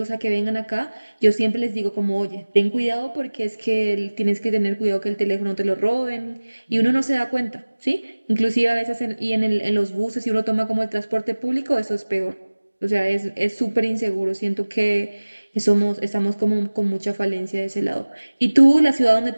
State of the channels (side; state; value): both; inverted; correlation -1.00